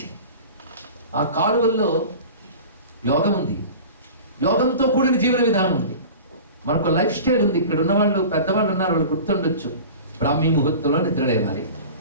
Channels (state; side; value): inverted; both; correlation -0.37